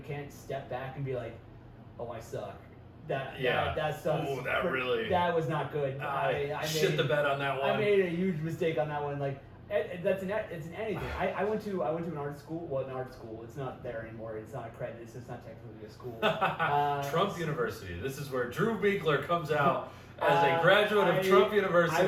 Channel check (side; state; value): both; identical; correlation 1.00